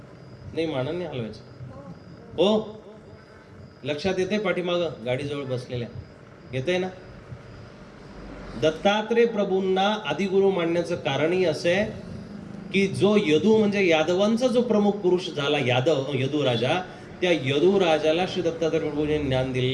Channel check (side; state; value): both; identical; correlation 1.00